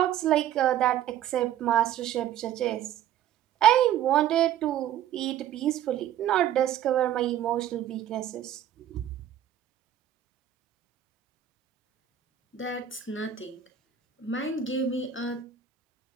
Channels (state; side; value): quieter; left; 10.7 dB